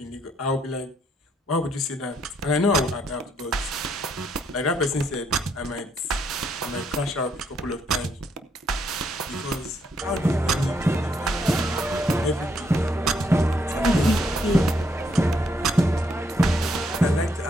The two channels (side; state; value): both; normal; correlation 0.73